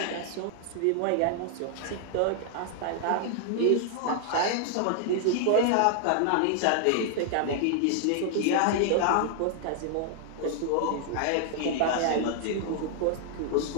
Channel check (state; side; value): different; both; correlation 0.00